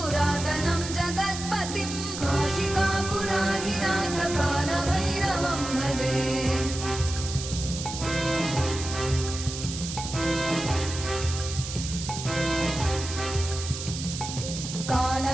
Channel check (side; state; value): right; noise; hiss, 8 dB below the sound